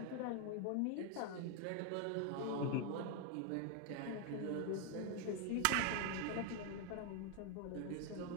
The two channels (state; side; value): different; both; correlation 0.01